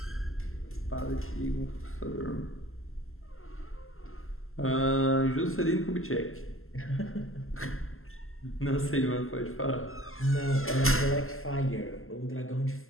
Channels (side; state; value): right; late; 0.62 ms